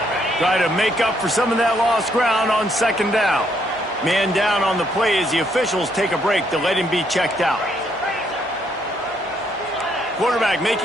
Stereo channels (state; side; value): normal; both; correlation 0.72